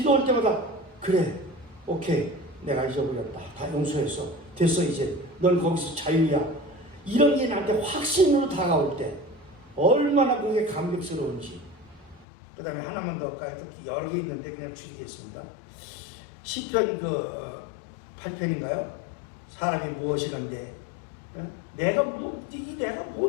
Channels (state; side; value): drops out; right; at 12.2 s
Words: 때마다 그래, 오케이, 내가 잊어버렸다. 다 용서했어. 됐어, 이제. 넌 거기서 자유야. 이런 게 나한테 확신으로 다가올 때 얼마나 그게 감격스러운지. 그 다음에 하나만 더 할까요? 여러 개 있는데 그냥 줄이겠습니다. 시편 8편인가요? 사람이 무엇이란데, 내가